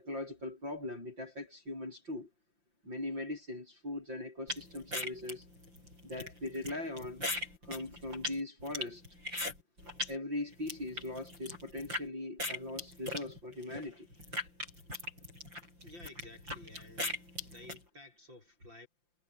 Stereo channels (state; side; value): late; left; 5.8 ms